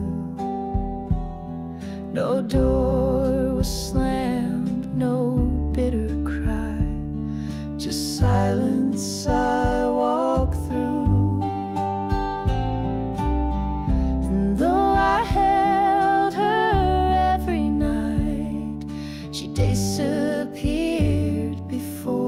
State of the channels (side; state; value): both; identical; correlation 1.00